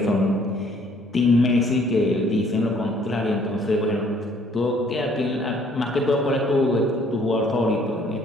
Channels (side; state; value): both; normal; correlation 0.61